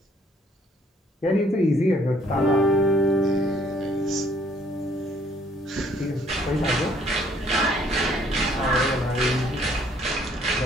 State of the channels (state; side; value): normal; both; correlation 0.63